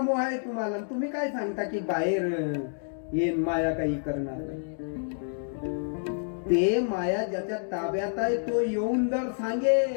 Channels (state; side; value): silent; right; digital silence